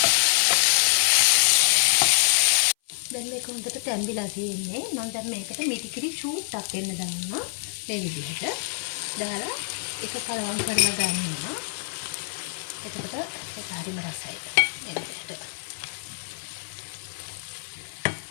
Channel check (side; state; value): right; silent; 57 dB below the other